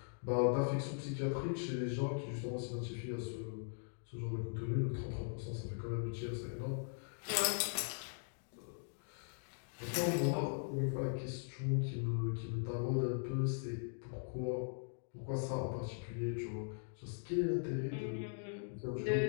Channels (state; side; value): silent; right; digital silence